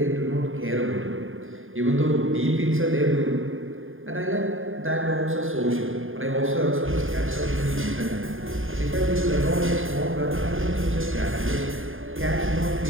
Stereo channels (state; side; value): late; left; 0.59 ms